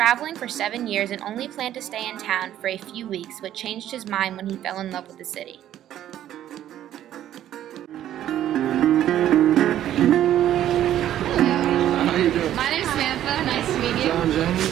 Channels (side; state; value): left; quieter; 11.8 dB